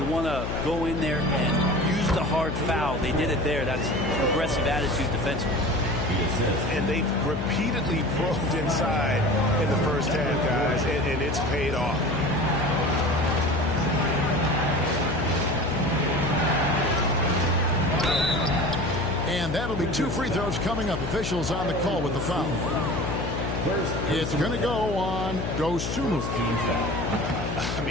want to go in there and use the hard foul. They did it there. That's aggressive attitude defensively. And they've repeatedly probed inside in the first half, guys, and it's paid off. And that'll be 2 free throws coming up. Officials on the call with the foul. It's going to go on Dosunmu. I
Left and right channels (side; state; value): left; noise; hum, 3 dB below the sound